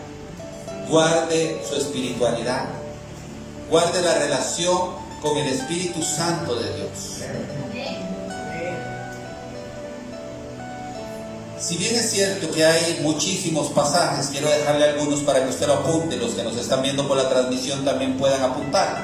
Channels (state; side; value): identical; both; correlation 1.00